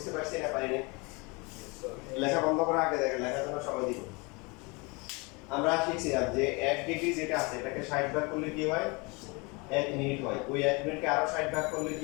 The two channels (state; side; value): quieter; right; 28.1 dB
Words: পারছি না পারিনি, লেখা বন্ধ করার আগে দেখেন লেখার জন্য সময় দিব। আমরা শিখছিলাম যে 1 ডিগ্রি যেটা আছে এটাকে 60 ভাগ করলে কি হয়, 1 মিনিট হয়। ওই 1 মিনিটকে আরো 60 ভাগ করলে